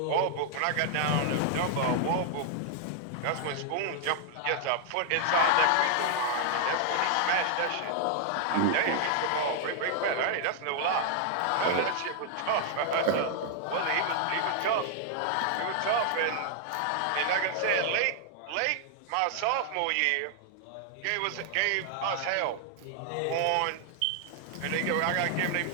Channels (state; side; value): different; both; correlation 0.00